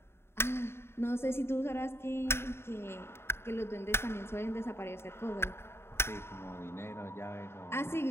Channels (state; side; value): late; right; 0.12 ms